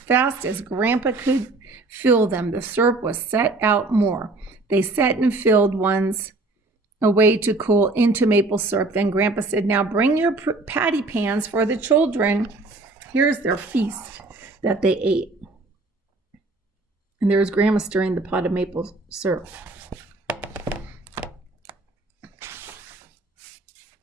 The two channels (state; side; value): quieter; left; 3.2 dB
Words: as Grandpa could fill them. The syrup was set out more. They set and filled ones away to cool into maple syrup. Then Grandpa said, "Now bring your patty pans for the children." Here's their feast that they ate. And there was Grandma stirring the pot of maple syrup.